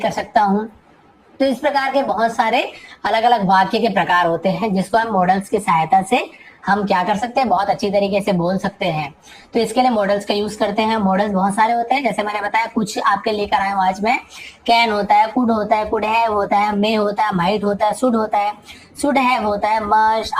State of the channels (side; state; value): both; identical; correlation 1.00